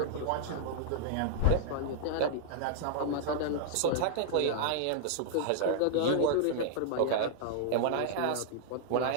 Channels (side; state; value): both; different; correlation -0.01